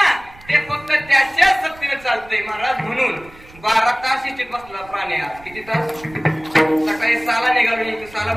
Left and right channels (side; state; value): right; noise; rumble, 23 dB below the sound